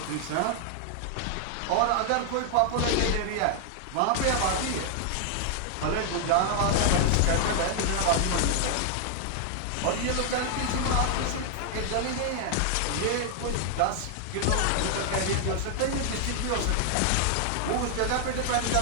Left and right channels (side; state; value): both; different; correlation 0.00